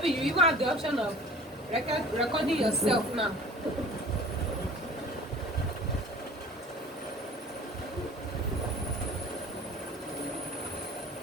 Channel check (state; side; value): normal; both; correlation 0.46